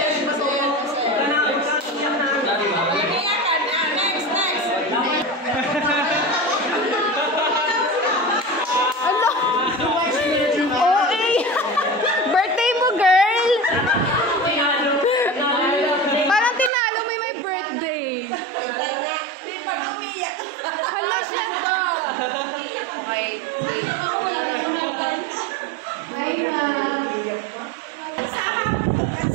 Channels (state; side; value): drops out; left; at 16.7 s